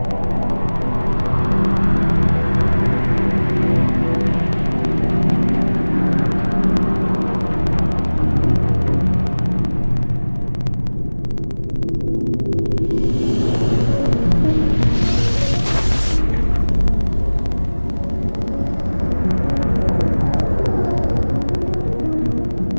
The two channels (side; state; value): both; inverted; correlation -1.00